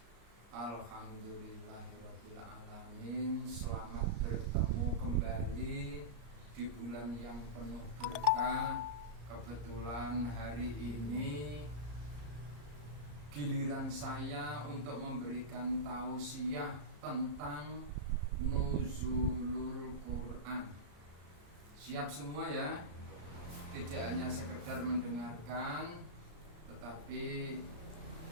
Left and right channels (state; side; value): late; left; 34 ms